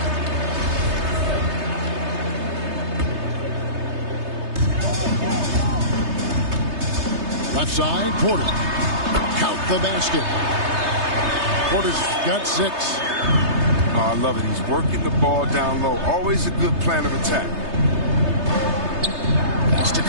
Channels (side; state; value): left; late; 3.3 ms